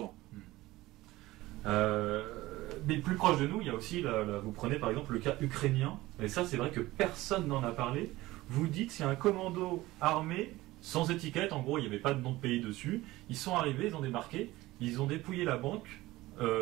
Mais plus proche de nous, il y a aussi, vous prenez par exemple le cas ukrainien, et ça c'est vrai que personne n'en a parlé. Vous dites, c'est un commando armé sans étiquette, en gros il n'y avait pas de nom de pays dessus, ils sont arrivés, ils ont débarqué, ils ont dépouillé la banque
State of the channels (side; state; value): left; quieter; 18.3 dB